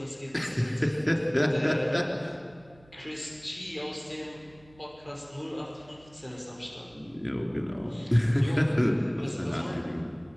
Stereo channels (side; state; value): right; noise; hum, 27 dB below the sound